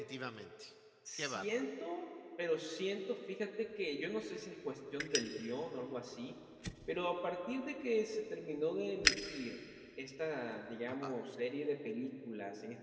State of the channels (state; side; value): identical; both; correlation 1.00